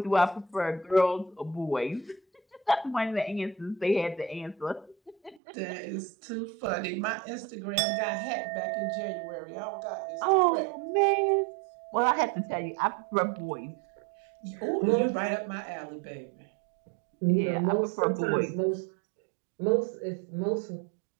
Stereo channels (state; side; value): drops out; left; at 5.4 s